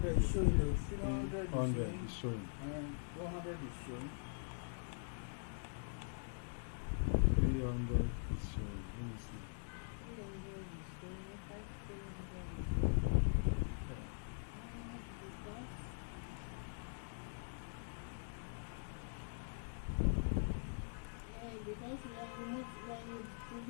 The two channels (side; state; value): right; silent; digital silence